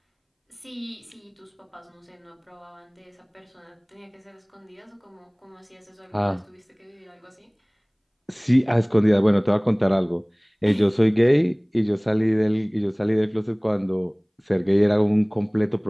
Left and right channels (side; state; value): both; identical; correlation 1.00